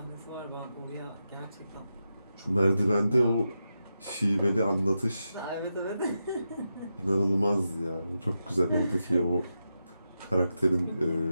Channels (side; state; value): both; inverted; correlation -0.88